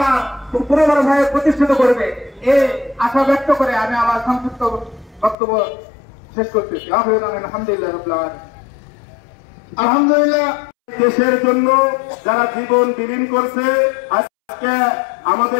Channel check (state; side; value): drops out; right; at 5.4 s